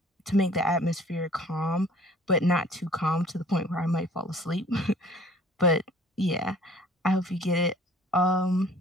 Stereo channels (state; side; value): normal; both; correlation 0.52